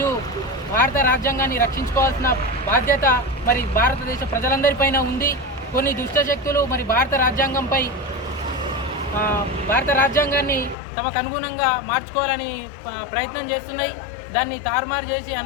భారత రాజ్యాంగాన్ని రక్షించుకోవాల్సిన బాధ్యత మరి భారతదేశ ప్రజలందరిపైన ఉంది. కొన్ని దుష్టశక్తులు మరి భారత రాజ్యాంగాన్ని తమకు అనుగుణంగా మార్చుకోవాలని ప్రయత్నం చేస్తున్నాయి. దాన్ని తారుమారు చేసి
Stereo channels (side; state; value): right; drops out; at 10.8 s